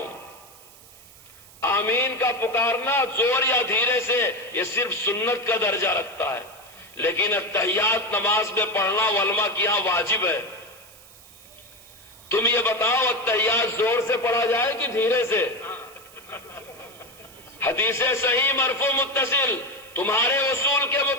آمین کا پکارنا زور یا دھیرے سے یہ صرف سنت کا درجہ رکھتا ہے، لیکن التحیات نماز میں پڑھنا علماء کی یہاں واجب ہے۔ تم یہ بتاؤ التحیات زور سے پڑھا جائے کہ دھیرے سے؟ حدیث صحیح مرفوع متصل تمہارے اصول کے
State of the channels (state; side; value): noise; right; hiss, 22 dB below the sound